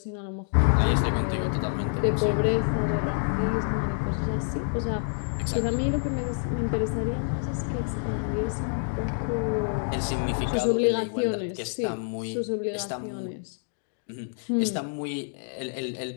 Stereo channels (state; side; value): silent; right; digital silence